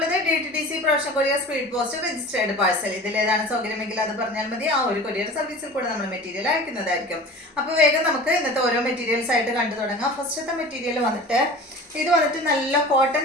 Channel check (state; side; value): normal; both; correlation 0.39